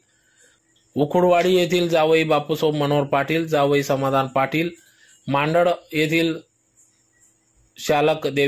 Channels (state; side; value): identical; both; correlation 1.00